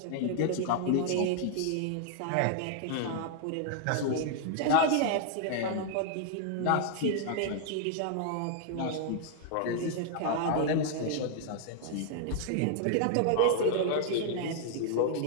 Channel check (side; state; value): both; different; correlation 0.00